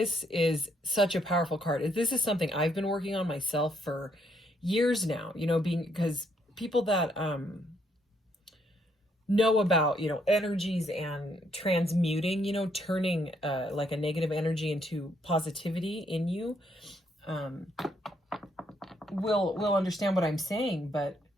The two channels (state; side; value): normal; both; correlation 0.72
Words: is such a powerful card. This is something I've been working on myself for years now, because people that know about, energies and transmuting, turning like a negative energy into positivity in you, will understand what I'm saying. But